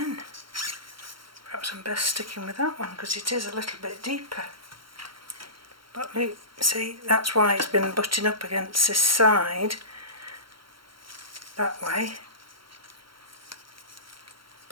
Perhaps I'm best sticking with that one because it is a little bit deeper. But look, see, that's why it's been butting up against this side that way,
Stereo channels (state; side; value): late; left; 0.73 ms